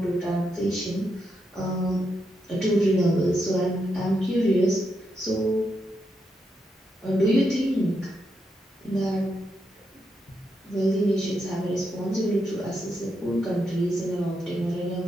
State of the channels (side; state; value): both; normal; correlation 0.83